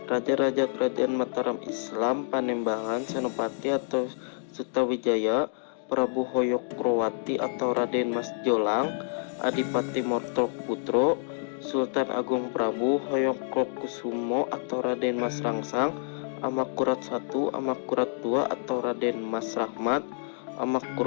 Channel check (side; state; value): right; silent; digital silence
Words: Raja-raja Kerajaan Mataram Islam Panembahan Senopati atau Sutawijaya, Prabu Hoyokrowati atau Raden Mas Jolang, Adipati Mortoputro, Sultan Agung Prabu Hoyongkusumo atau Raden Mas Rangsang, Amangkurat I, Amangkurat II atau Raden Mas Rahmat,